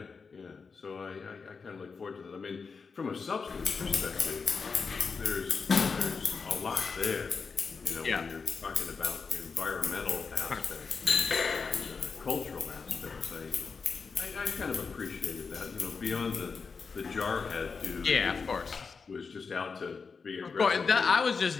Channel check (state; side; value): quieter; right; 5.1 dB